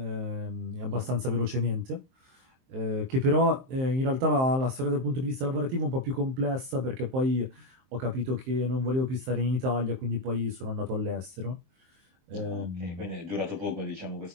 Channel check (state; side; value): late; left; 23 ms